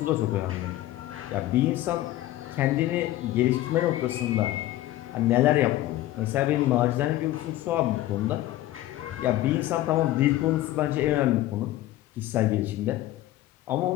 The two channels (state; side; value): quieter; right; 15.1 dB